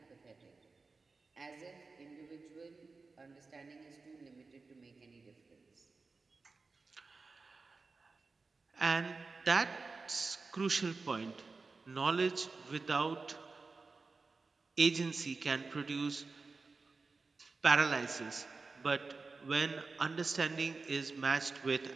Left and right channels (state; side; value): quieter; left; 4.1 dB